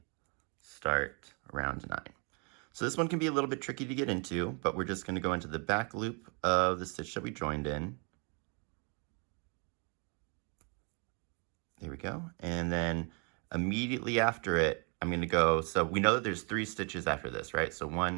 start round 9. So this one can be a little bit tricky to get into, but we're just going to go into the back loop of the stitch that we joined in. There we go. And then immediately after it, I'm going to go, so we know that there's 3 stitches after this, right? So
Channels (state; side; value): quieter; left; 35.3 dB